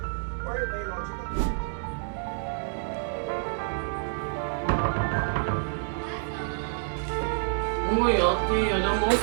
Or a biological boy? Uy, ate, alam mo,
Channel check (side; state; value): left; silent; digital silence